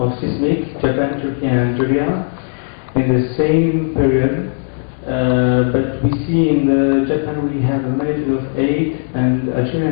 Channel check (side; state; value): right; silent; 67 dB below the other